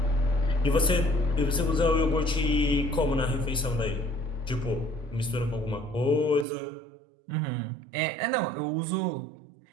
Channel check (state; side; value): drops out; left; at 6.5 s